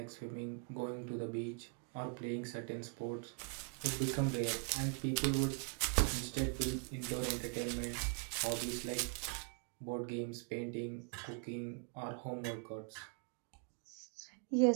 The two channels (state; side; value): quieter; left; 39.8 dB